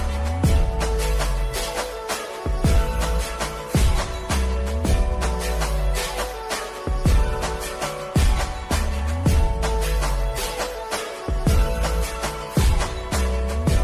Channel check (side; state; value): both; identical; correlation 1.00